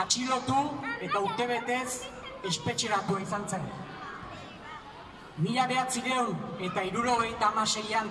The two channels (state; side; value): identical; both; correlation 1.00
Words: eta urtebetez espetxeratua izan zen. 1976an